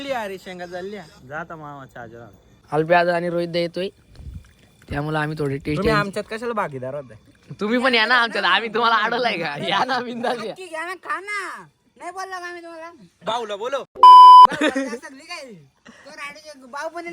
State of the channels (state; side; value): identical; both; correlation 1.00